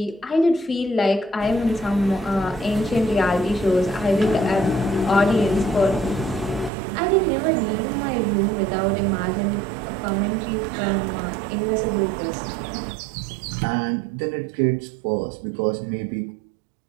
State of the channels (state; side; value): drops out; left; at 6.7 s